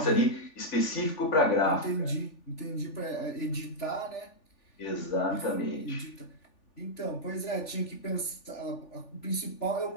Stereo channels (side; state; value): right; late; 3.4 ms